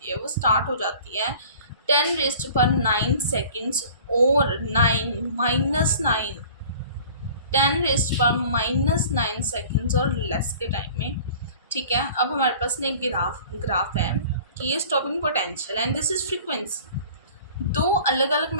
है वो स्टार्ट हो जाती है 10⁻9 सेकेंड्स और 9 10⁻9 सेकेंड्स और लेस के टाइम में, ठीक है। अब हमारे पास ना एक ग्राफ है कि ये stopping potential and this is frequency. दो अलग अलग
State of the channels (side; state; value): both; inverted; correlation -0.46